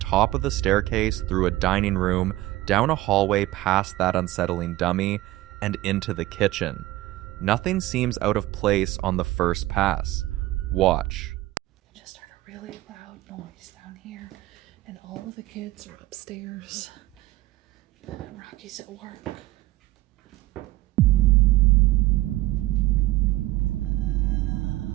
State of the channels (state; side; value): quieter; left; 17.2 dB